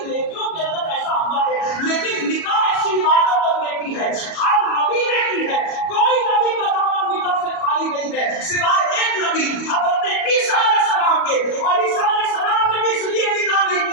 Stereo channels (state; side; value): late; right; 37 ms